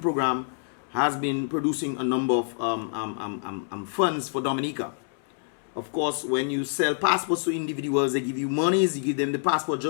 Program, has been producing a number of funds for Dominica. Of course, when you sell passports to individuals, they give you monies, you give them the passport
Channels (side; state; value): right; silent; 60 dB below the other